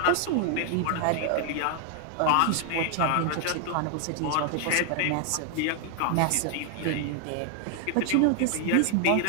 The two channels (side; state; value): both; different; correlation 0.00